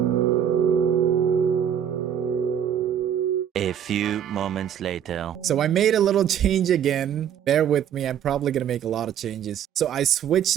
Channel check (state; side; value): quieter; left; 9.4 dB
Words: A few moments later. So I made a little change again. Bear with me, I'm probably going to make a lot of changes. So I